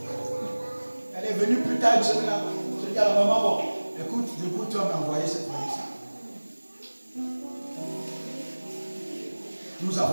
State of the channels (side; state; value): both; inverted; correlation -1.00